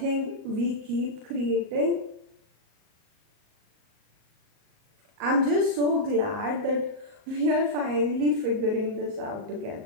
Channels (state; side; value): late; left; 38 ms